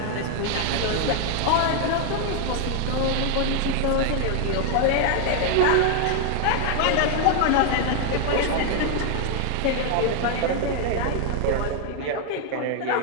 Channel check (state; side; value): different; both; correlation 0.00